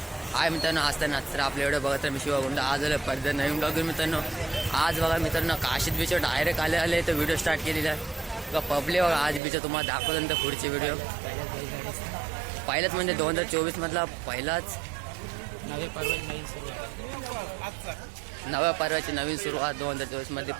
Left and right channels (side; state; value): left; drops out; at 9.4 s